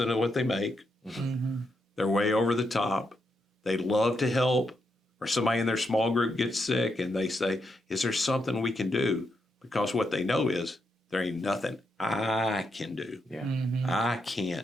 of what they make. They're way over the top. They love to help, or somebody in their small group gets sick and they say, is there something we can do? Because what they know is there ain't nothing I can do. Yeah. I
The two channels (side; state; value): both; normal; correlation 0.81